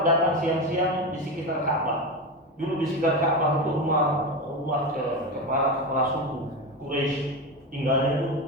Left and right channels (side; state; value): both; normal; correlation 0.19